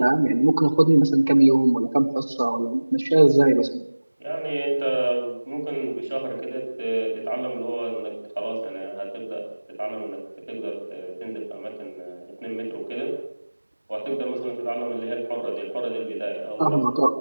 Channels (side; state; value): both; inverted; correlation -1.00